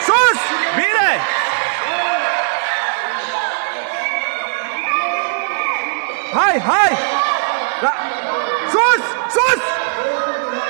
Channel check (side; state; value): left; silent; digital silence